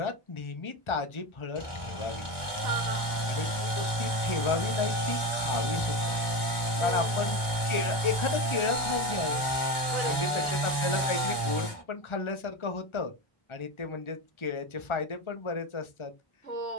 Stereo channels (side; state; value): right; late; 1.2 ms